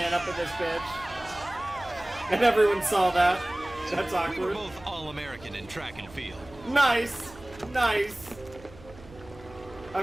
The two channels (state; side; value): noise; right; hum, 20 dB below the sound